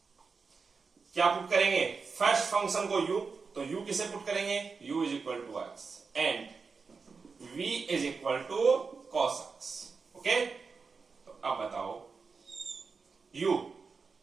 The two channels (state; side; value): quieter; left; 4.9 dB